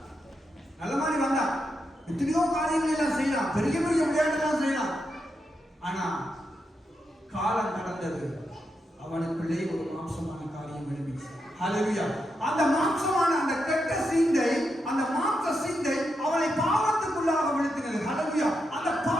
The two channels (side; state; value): both; normal; correlation 0.85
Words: நல்ல மாதிரி வந்தான். எத்தனையோ காரியங்கள் எல்லாம் செய்யலாம், பெரிய பெரிய விளையாட்டுலாம் செய்யலாம். ஆனா காலம் கடந்தது. அவனுக்குள்ளே ஒரு மாம்சமான காரியம் எழுப்பிச்சு. ஹல்லேலூயா. அந்த மாம்சமான அந்த கெட்ட சிந்தை, அந்த மாம்ச சிந்தை அவனை பாவத்துக்குள்ளாக விழுத்தினது. ஹல்லேலூயா. அந்த